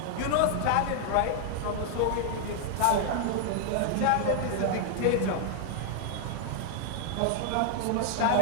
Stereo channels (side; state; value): both; different; correlation 0.00